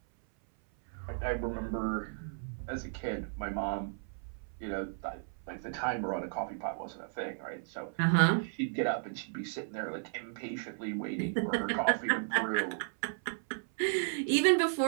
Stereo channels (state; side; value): silent; left; 55 dB below the other